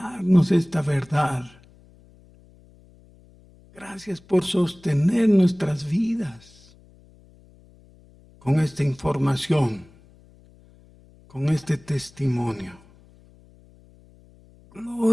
esta verdad. Gracias por sostener nuestras vidas con esta información, con este testimonio.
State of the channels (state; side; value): noise; left; hum, 27 dB below the sound